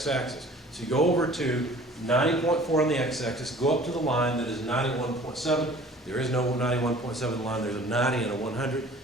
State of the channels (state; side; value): normal; both; correlation 0.48